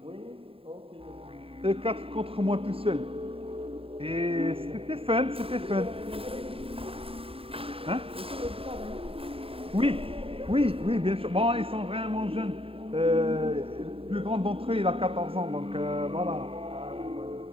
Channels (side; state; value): left; late; 0.27 ms